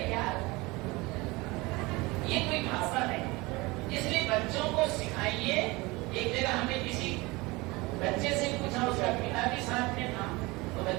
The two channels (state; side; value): quieter; left; 23.1 dB